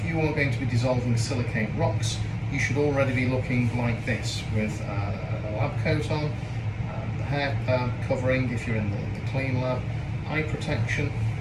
you are going to be dissolving silicate rocks, you should already be looking like this with a lab coat on, the hair covering if you're in the clean lab, eye protection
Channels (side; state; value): both; identical; correlation 1.00